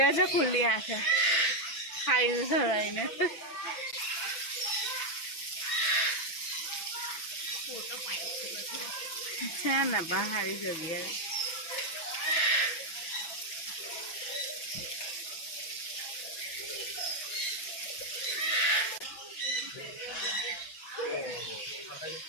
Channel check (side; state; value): right; late; 6.0 ms